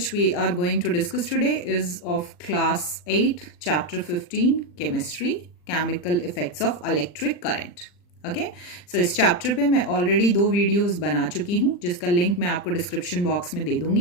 we are going to discuss today is of class 8, chapter 15, chemistry, chemical effects of electric current. Okay so इस chapter पे मैं already 2 videos बना चुकी हूँ जिसका link मैं आपको description box में दे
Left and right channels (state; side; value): late; right; 40 ms